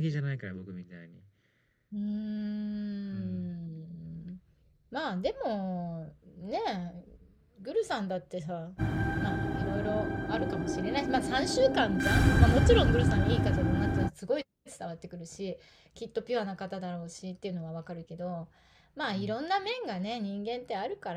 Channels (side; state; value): both; identical; correlation 1.00